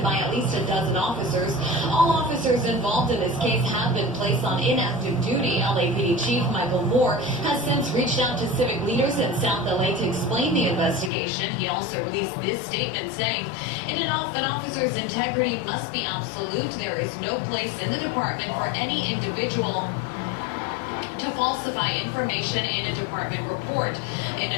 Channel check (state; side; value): drops out; right; at 11.1 s